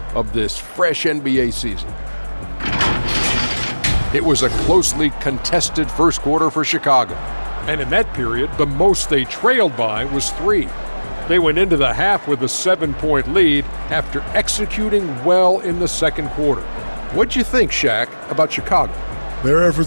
of this fresh NBA season. It was a closely contested first quarter for Chicago. And in that period, the most they trailed by was 3. They went into the half with a 7-point lead after executing well in the second quarter. What'd you think, Shaq, about Chicago? Their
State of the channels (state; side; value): inverted; both; correlation -1.00